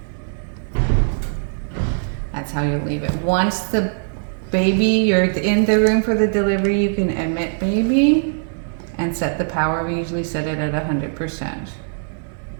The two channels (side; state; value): left; silent; digital silence